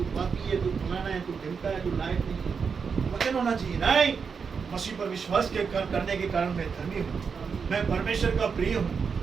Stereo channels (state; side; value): quieter; left; 5.8 dB